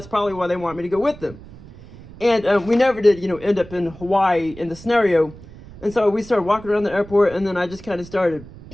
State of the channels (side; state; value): right; noise; rumble, 18 dB below the sound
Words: probably why they want me to go with them. And we never did, you know, end up in Hawaii in the scenario. And so we started walking around the airport, and then I just kind of started